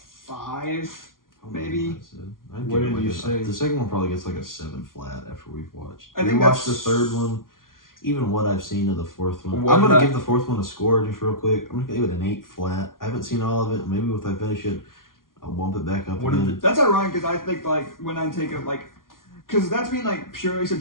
Maybe. What did you say? The second one probably gets like a 7 flat after we've watched. I think we watched the that's- third one. Even what I've seen of the fourth one. What I'm gonna did I- give the fourth one a score just real quick. I'm gonna give it an 8 flat. I haven't seen all of it. Maybe if I finish it, I'll bump it back up What again. did That's ironic because I think like when I take it like, because that's being like purely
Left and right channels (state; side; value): late; right; 0.91 ms